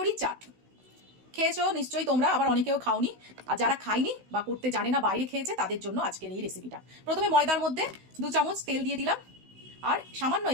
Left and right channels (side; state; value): left; late; 16 ms